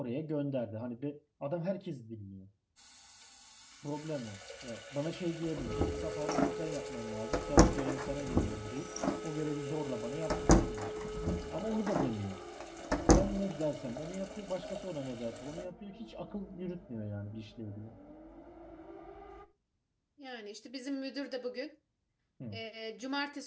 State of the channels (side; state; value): both; identical; correlation 1.00